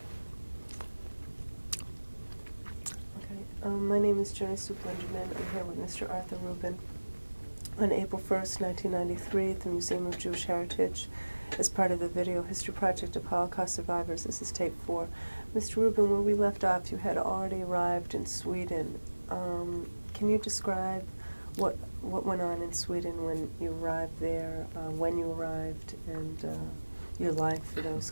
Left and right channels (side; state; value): both; inverted; correlation -1.00